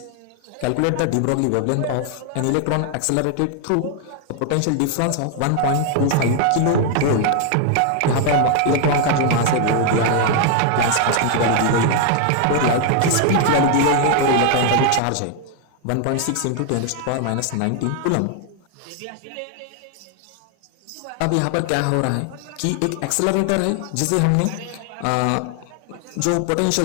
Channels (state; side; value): different; both; correlation 0.00